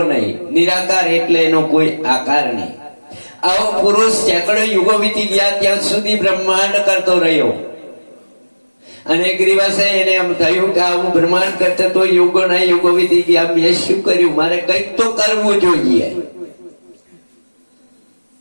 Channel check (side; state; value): both; inverted; correlation -1.00